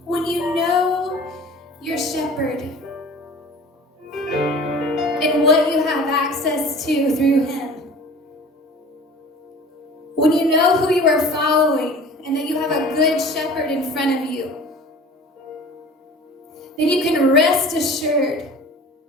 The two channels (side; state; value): both; normal; correlation 0.42